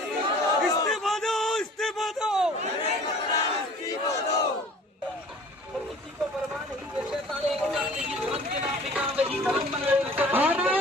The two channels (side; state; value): both; normal; correlation 0.48